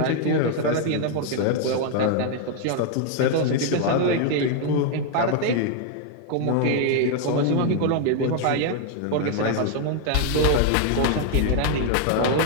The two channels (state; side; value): different; both; correlation 0.00